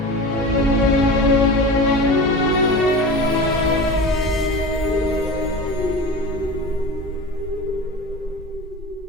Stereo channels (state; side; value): normal; both; correlation 0.31